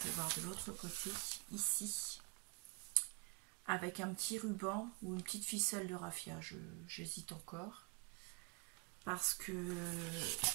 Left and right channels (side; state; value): left; quieter; 29.9 dB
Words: voir de l'autre côté, ici. Avec un petit ruban ou une petite ficelle de raffia. J'hésite encore. Parce que